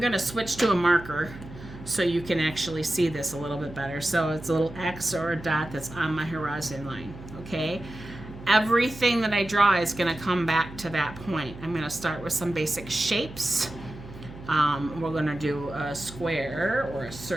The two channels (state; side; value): noise; right; hum, 15 dB below the sound